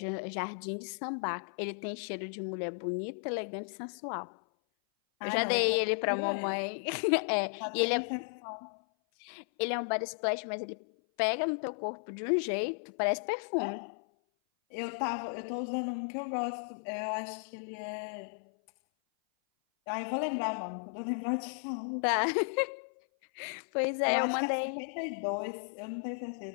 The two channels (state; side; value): silent; right; 55 dB below the other